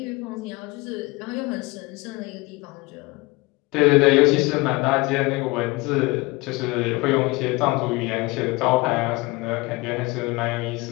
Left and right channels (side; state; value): right; quieter; 23.5 dB